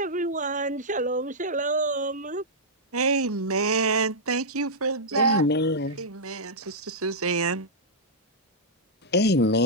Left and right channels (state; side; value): normal; both; correlation -0.09